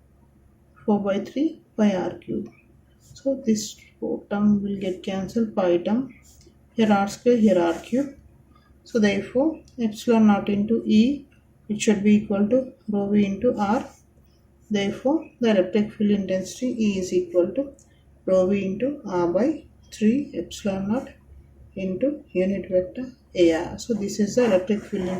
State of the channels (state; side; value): identical; both; correlation 1.00